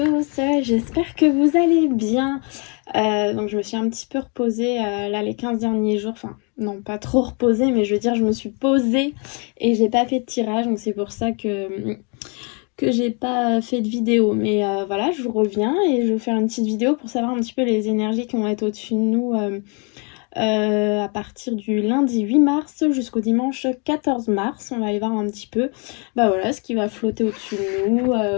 j'espère que vous allez bien. Donc je me suis un petit peu reposée là les 15 derniers jours, enfin non pas trop reposée, mais je veux dire je me suis posée et j'ai pas fait de tirage, donc c'est pour ça que j'ai pas fait de vidéo. Mais voilà, je vous reviens et je vais vous faire une petite vidéo pour savoir un petit peu les énergies qui vont être au-dessus de nous à partir du lundi 8 mars jusqu'au dimanche 14 mars. On va aller voir un petit peu bah voilà, ce qui va flotter au-dessus de nous,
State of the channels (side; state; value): right; quieter; 34.6 dB